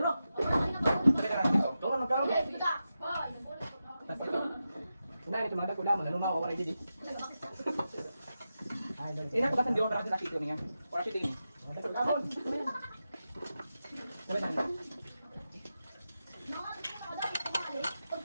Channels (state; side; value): inverted; both; correlation -0.90